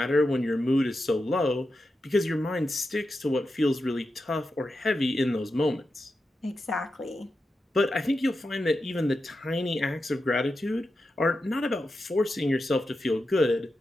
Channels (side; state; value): both; normal; correlation 0.89